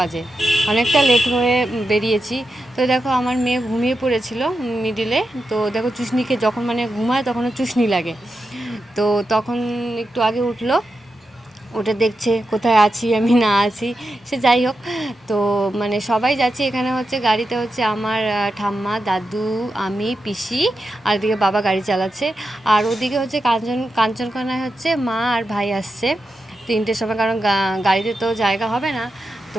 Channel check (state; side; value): normal; both; correlation 0.89